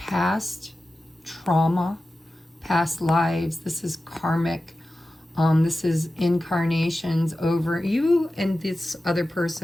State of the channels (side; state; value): both; normal; correlation 0.94